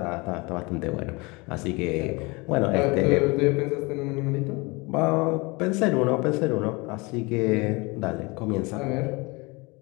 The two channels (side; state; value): right; quieter; 26.3 dB